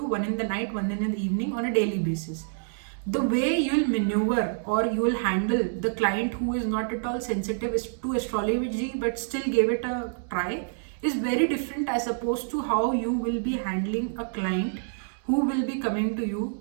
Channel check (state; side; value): silent; left; digital silence